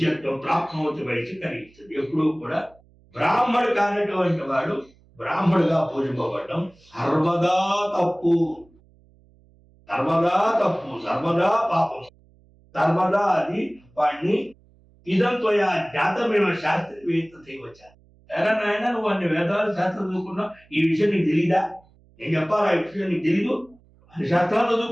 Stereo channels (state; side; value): noise; right; hum, 30 dB below the sound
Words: ప్రాప్నోతి వయసు కలిగిస్తుంది. ఎప్పుడూ కూడా బ్రాహ్మడు కానటువంటి వాడు బ్రాహ్మడుగా పూజింపబడడం సర్వదా తప్పు, సర్వదా తప్పు, సర్వదా పాపం, సర్వదా అది వాడిని ఇదంతో జాతమేమో శాస్త్రవేత్త చేయవచ్చా. ఎరా నాయన, నువ్వు అన్ని వేదాలు శాస్త్రం చదువుకున్నావు, ఈ విషయం నీకు తెలీదా? నేను చెప్పాలా ఈ విషయం నీకు తెలీదు? అన్ని శాస్త్రాలు